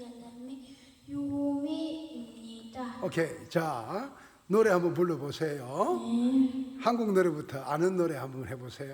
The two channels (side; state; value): both; identical; correlation 1.00